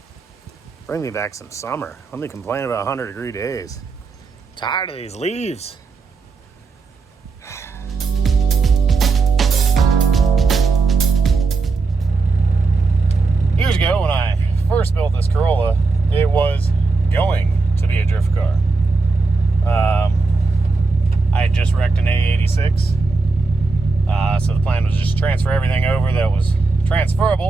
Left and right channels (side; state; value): left; quieter; 4.1 dB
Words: Bring me back some summer. Let me complain about 100-degree days. Tired of these leaves. Years ago, when I first built this Corolla, it was going to be a drift car. I had just wrecked an A86, so the plan was just to transfer everything over that was